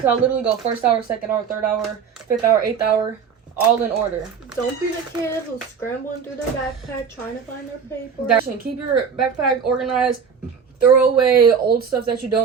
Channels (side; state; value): left; quieter; 6.5 dB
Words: literally go first hour, second hour, third hour, fifth hour, eighth hour, all in order. Don't be the kid who's scrambling through their backpack trying to find their paper. Keep your backpack organized. Throw away old stuff that you